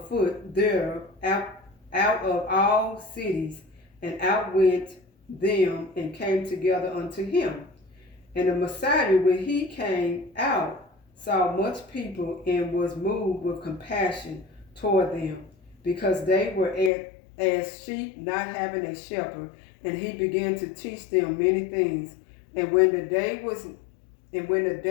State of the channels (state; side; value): drops out; right; at 16.9 s